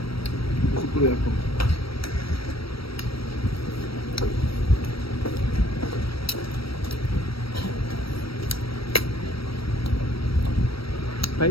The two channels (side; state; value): right; late; 0.75 ms